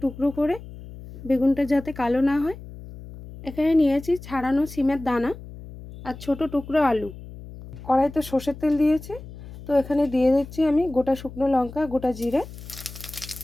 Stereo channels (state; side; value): noise; left; hum, 15 dB below the sound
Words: টুকরো করে, বেগুনটা যাতে কালো না হয়। এখানে নিয়েছি ছাড়ানো সিমের দানা আর ছোট টুকরো আলু। কড়াইতে সর্ষের তেল দিয়েছি, তো এখানে দিয়ে দিচ্ছি আমি গোটা শুকনো লঙ্কা, গোটা জিরে,